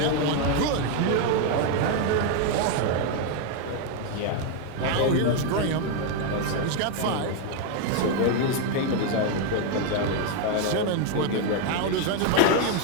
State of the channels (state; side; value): different; both; correlation 0.01